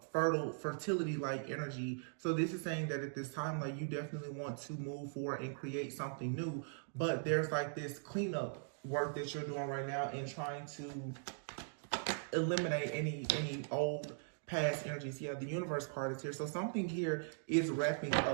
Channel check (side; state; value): left; silent; digital silence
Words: fertility like energy. So this is saying that at this time, like, you definitely want to move forward and create something new, but there's like this cleanup work that you're doing right now and trying to eliminate any old past energies. Yeah, the universe card is here. So something here is wrapping